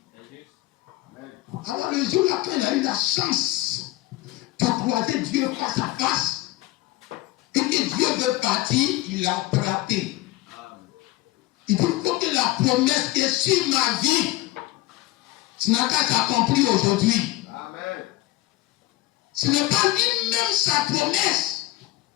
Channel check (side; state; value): right; quieter; 17.4 dB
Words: Alors le jour-là, quand il a eu la chance de croiser Dieu face à face, et que Dieu veut partir, il l'a attrapé. Il dit, il faut que la promesse qui est sur ma vie, ce n'a qu'à s'accomplir aujourd'hui. Amen. Ce n'est pas lui-même sa promesse.